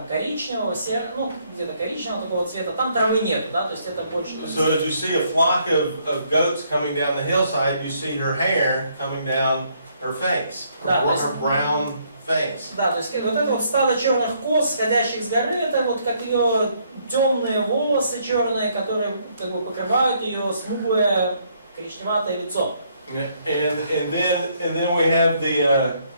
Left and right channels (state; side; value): inverted; both; correlation -0.69